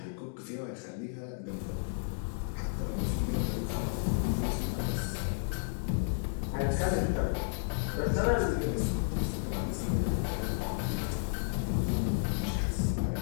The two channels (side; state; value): right; silent; digital silence